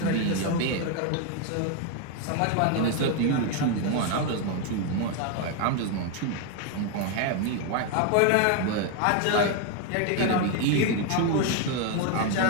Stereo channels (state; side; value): different; both; correlation 0.01